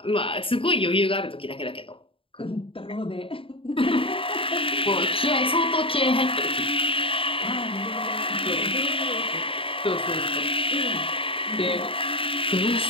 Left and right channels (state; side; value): late; right; 0.26 ms